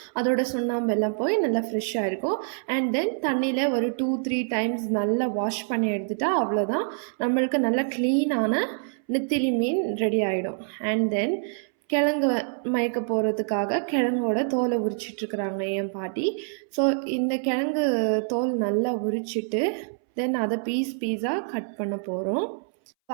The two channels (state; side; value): silent; left; 61 dB below the other